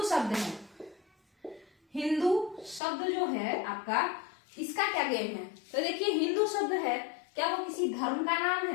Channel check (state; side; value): drops out; right; at 2.8 s